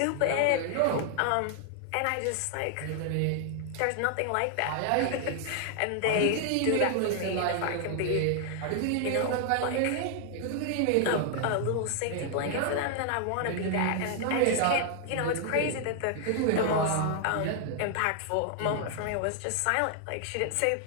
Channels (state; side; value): different; both; correlation 0.00